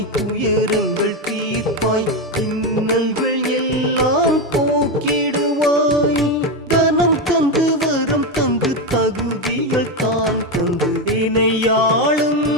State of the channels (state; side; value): normal; both; correlation 0.11